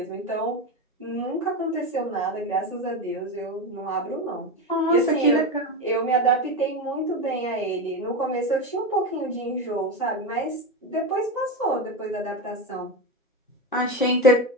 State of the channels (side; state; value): both; normal; correlation 0.17